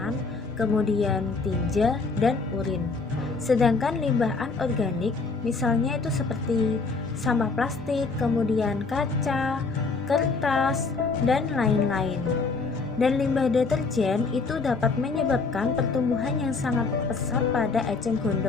kemudian tinja, dan urin. Sedangkan limbah anorganik misalnya itu seperti sampah plastik, kemudian kaca, kertas, dan lain-lain. Dan limbah deterjen itu dapat menyebabkan pertumbuhan yang sangat pesat pada eceng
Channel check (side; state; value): right; quieter; 4.2 dB